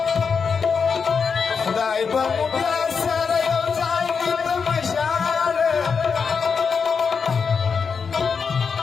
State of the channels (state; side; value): quieter; right; 5.7 dB